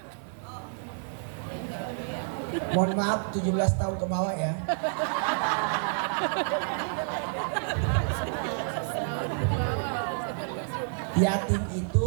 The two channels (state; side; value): silent; left; digital silence